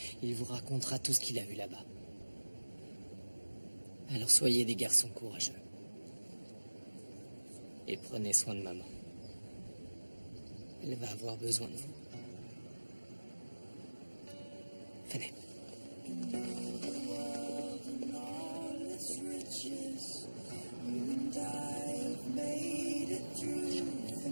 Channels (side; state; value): both; inverted; correlation -1.00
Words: il vous racontera tout ce qu'il a vu là-bas. Alors soyez des garçons courageux. Et prenez soin de maman. Elle va avoir besoin de vous. Venez.